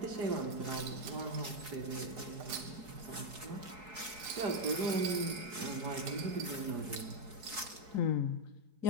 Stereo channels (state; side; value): late; left; 4.7 ms